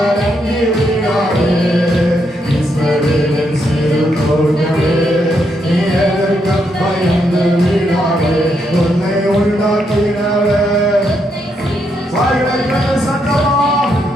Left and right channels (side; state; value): both; normal; correlation 0.78